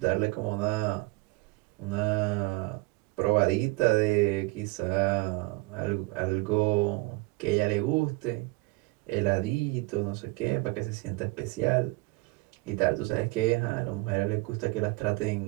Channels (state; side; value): quieter; left; 24.2 dB